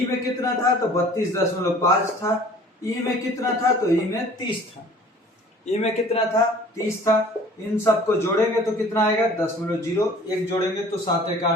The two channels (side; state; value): both; normal; correlation 0.49